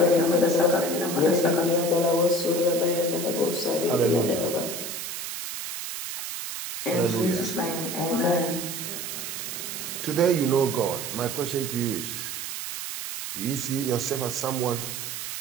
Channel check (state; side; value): noise; right; hiss, 6 dB below the sound